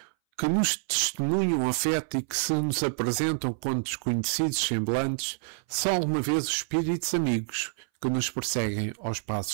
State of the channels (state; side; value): silent; left; 59 dB below the other